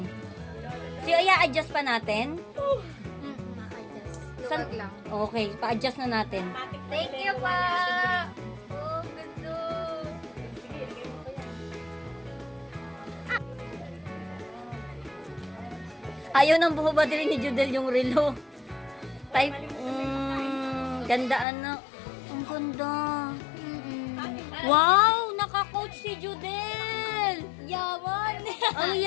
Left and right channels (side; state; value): right; drops out; at 21.5 s